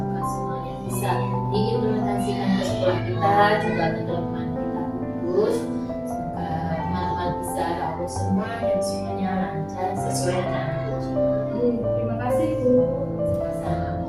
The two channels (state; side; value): identical; both; correlation 1.00